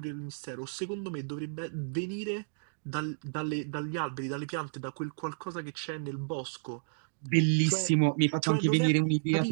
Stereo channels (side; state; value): left; silent; digital silence